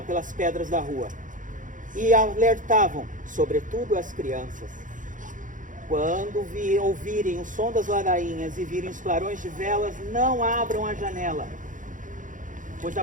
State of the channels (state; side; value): late; left; 0.38 ms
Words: pelas pedras da rua. E alertavam, sobretudo as crianças. Quando ouvirem o som das ladainhas e virem os clarões de velas, não abram a janela, pois a